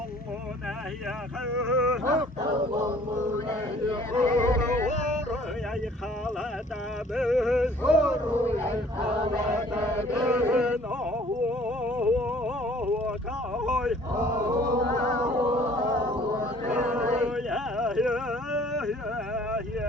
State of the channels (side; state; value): both; normal; correlation 0.55